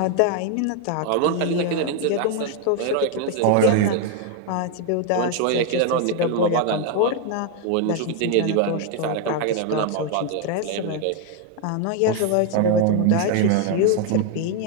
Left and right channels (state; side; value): different; both; correlation 0.01